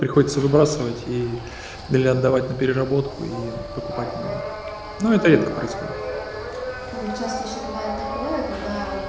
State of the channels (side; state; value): both; identical; correlation 1.00